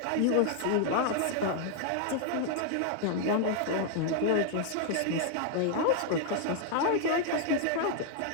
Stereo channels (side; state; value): both; different; correlation 0.00